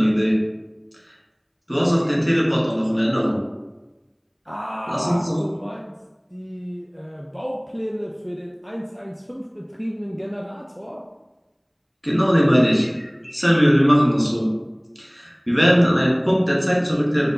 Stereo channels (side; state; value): both; identical; correlation 1.00